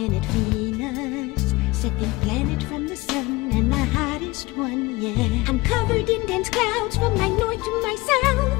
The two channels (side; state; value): right; quieter; 21.4 dB